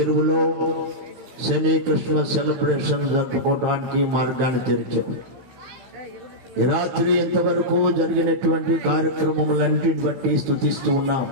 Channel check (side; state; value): left; late; 16 ms